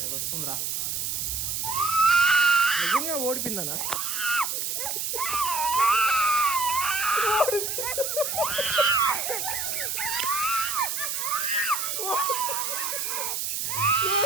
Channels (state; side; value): noise; right; hiss, 2 dB below the sound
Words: అది వస్తుందిరా. నిజంగా ఓడిపోయిందనా?